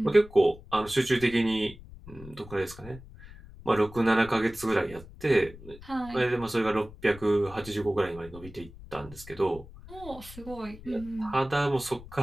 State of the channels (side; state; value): left; noise; rumble, 17 dB below the sound